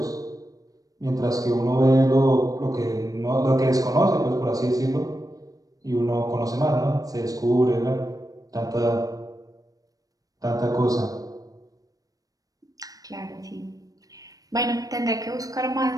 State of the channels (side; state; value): left; late; 0.18 ms